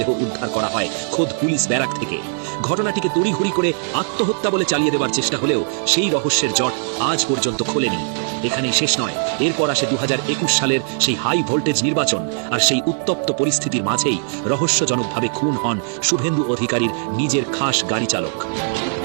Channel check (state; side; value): silent; left; digital silence